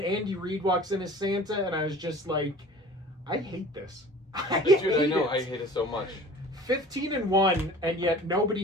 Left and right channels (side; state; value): both; normal; correlation 0.44